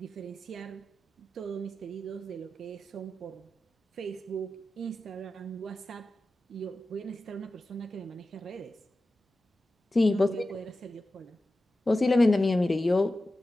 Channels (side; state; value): both; normal; correlation 0.93